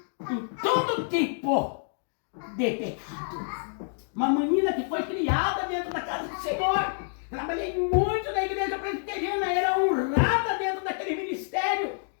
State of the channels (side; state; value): right; silent; digital silence